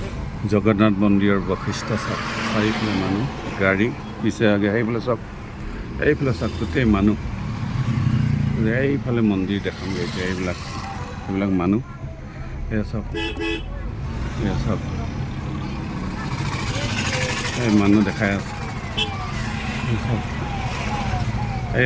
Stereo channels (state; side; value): identical; both; correlation 1.00